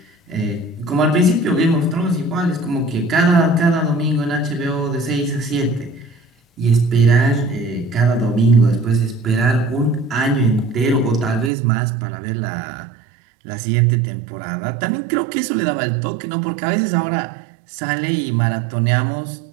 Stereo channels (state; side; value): drops out; left; at 11.5 s